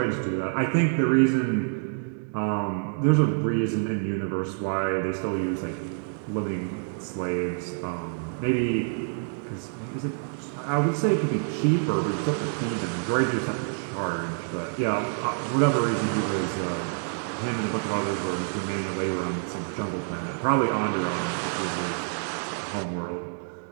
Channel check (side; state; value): left; silent; 60 dB below the other